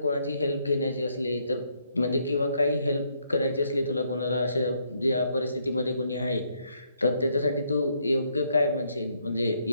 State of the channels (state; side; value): inverted; both; correlation -0.73